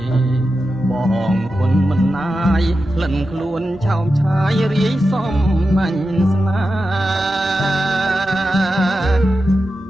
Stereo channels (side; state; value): both; normal; correlation 0.91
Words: បងគុណមិនណាយក្លិនខ្លួនឆោមឆាយរាយសំណាញ់ស្នា